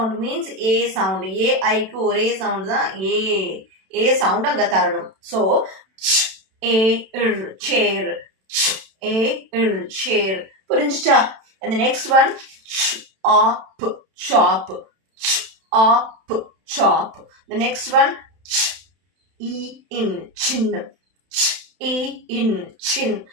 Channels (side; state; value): left; late; 32 ms